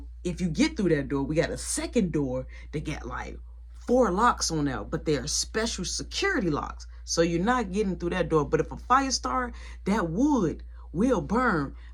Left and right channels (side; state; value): both; identical; correlation 1.00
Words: if you get through that door, we got a second door that got like 4 locks on there, but they're special security locks. So you're not getting through that door. But if a fire starts, that wood will burn.